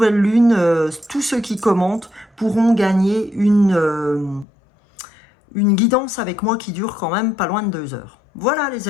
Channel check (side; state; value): right; drops out; at 4.5 s